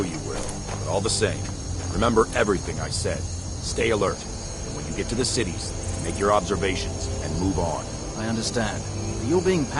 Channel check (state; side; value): identical; both; correlation 1.00